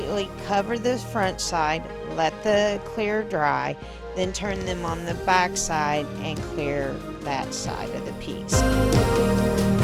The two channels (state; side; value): identical; both; correlation 1.00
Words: cover the front side, let the clear dry, then turn them on the back side and clear that side of the piece.